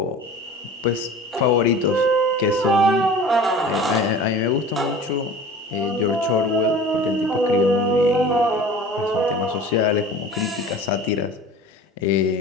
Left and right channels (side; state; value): both; normal; correlation 0.41